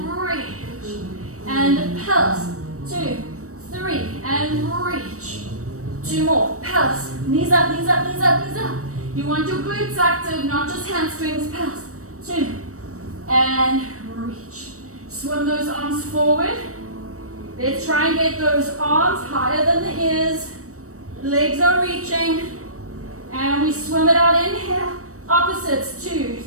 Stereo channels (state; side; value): late; left; 0.65 ms